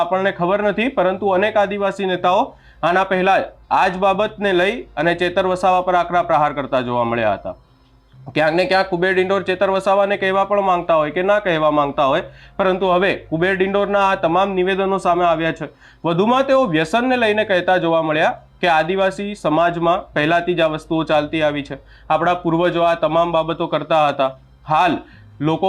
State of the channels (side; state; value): both; identical; correlation 1.00